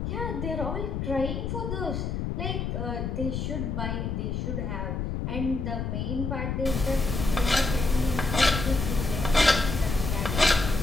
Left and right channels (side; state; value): left; noise; rumble, 2 dB below the sound